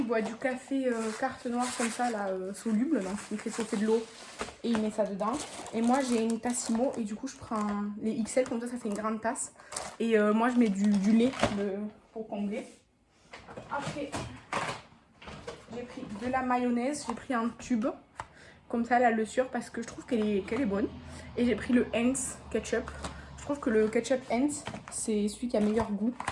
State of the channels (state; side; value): identical; both; correlation 1.00